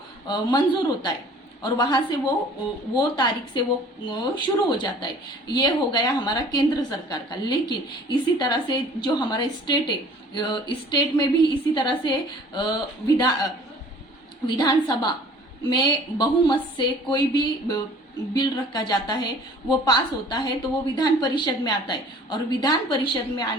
मंजूर होता है, और वहां से वो तारीख से वो शुरू हो जाता है। ये हो गया हमारा केंद्र सरकार का। लेकिन इसी तरह से जो हमारा स्टेट है, स्टेट में भी इसी तरह से विधानसभा में बहुमत से कोई भी बिल रखा जाता है, वो पास होता है तो वो विधान परिषद में आता है, और विधान परिषद में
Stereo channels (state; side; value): normal; both; correlation 0.50